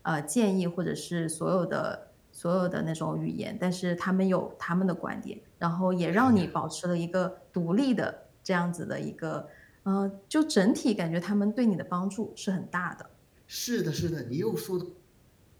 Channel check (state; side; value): identical; both; correlation 1.00